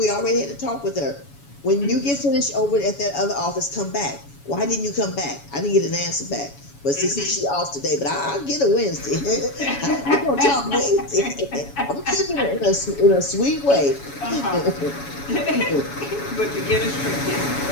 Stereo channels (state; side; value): late; right; 7.1 ms